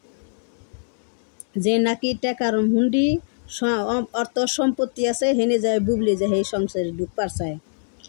যে নাকি টাকার হুন্ডি অর্থ সম্পত্তি আছে হেনে যায় বুবলি, যে এই সংসারে ঢুকবার চায়।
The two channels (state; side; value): silent; right; digital silence